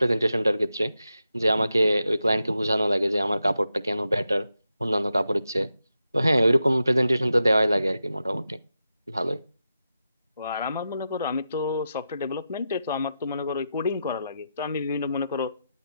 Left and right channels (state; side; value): inverted; both; correlation -0.88